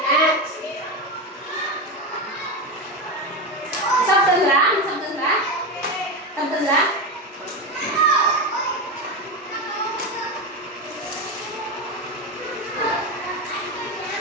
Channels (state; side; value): normal; both; correlation 0.16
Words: Sabdan lang? Sabdan lang? Sabdan lang?